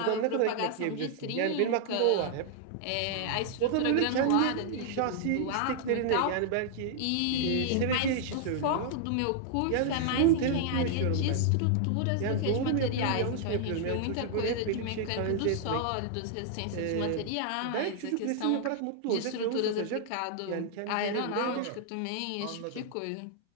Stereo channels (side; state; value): both; different; correlation -0.01